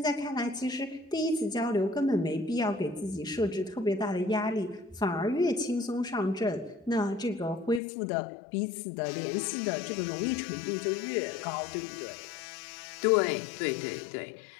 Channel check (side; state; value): right; drops out; at 7.8 s